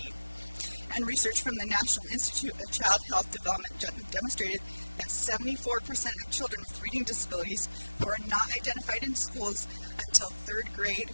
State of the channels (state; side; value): inverted; both; correlation -1.00